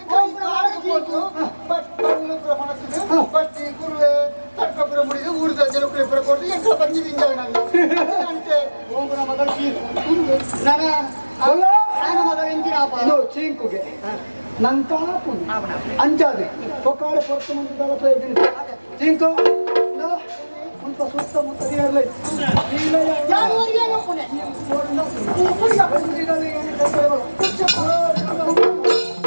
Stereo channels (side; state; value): both; inverted; correlation -1.00